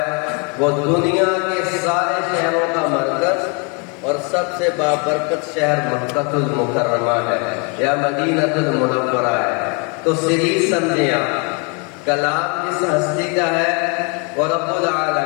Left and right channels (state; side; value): quieter; right; 34.5 dB